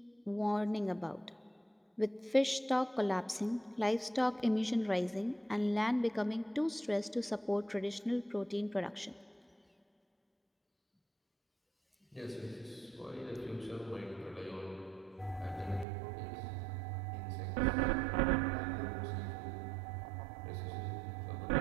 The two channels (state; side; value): drops out; left; at 15.9 s